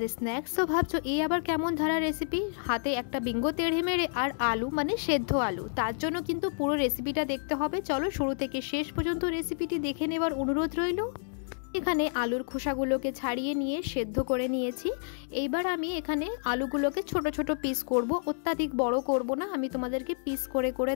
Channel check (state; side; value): silent; right; digital silence